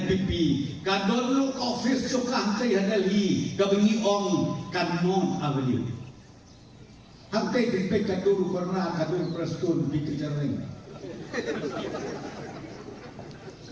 kadon lu office suka hantai hadali kabengi ong kanon avenue. Hantai dipek kadur karena kadur prestun dikejareng.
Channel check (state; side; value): identical; both; correlation 1.00